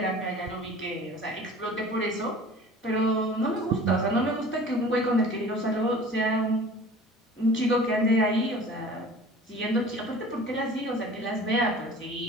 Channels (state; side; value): normal; both; correlation 0.43